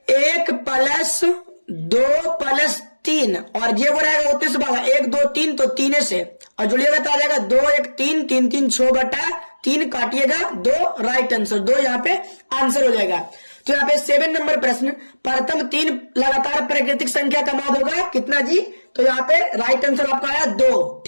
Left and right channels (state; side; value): inverted; both; correlation -1.00